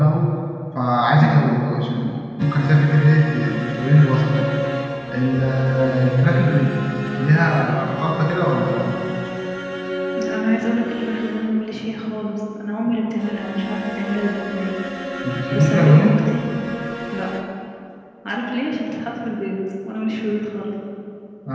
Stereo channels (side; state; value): both; identical; correlation 1.00